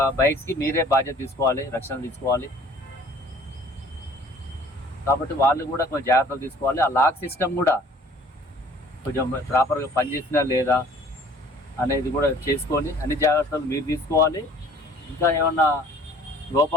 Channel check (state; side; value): normal; both; correlation 0.52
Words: బైక్స్కి మీరే బాధ్యత తీసుకోవాలి, రక్షణ తీసుకోవాలి. కాబట్టి వాళ్ళు కూడా కొంచెం జాగ్రత్తలు తీసుకోవాలి. ఆ లాక్ సిస్టమ్ కూడా కొంచెం ప్రాపర్గా పనిచేసినా లేదా అనేది కూడా చేసుకొని అన్ని జాగ్రత్తలు మీరు తీసుకోవాలి. ఇంకా ఏమన్నా